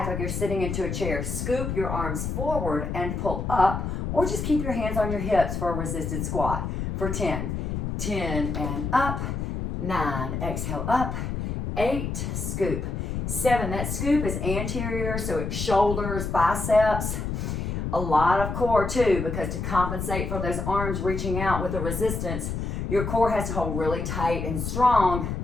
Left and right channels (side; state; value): left; noise; rumble, 3 dB below the sound